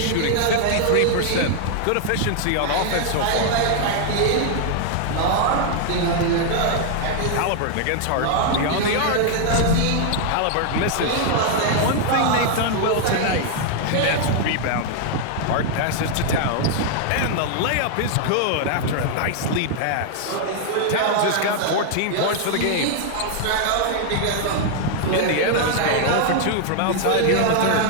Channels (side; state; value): both; different; correlation 0.00